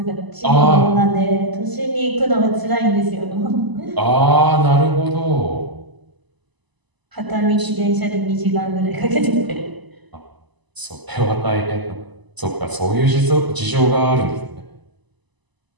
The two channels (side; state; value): left; late; 1.0 ms